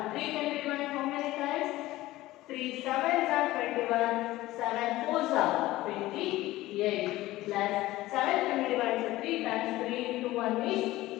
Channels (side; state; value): right; quieter; 17.2 dB